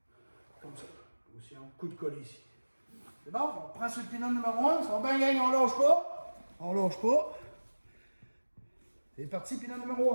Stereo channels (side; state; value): both; inverted; correlation -1.00